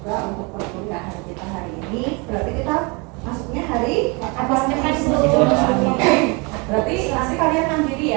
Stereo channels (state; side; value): quieter; left; 29.8 dB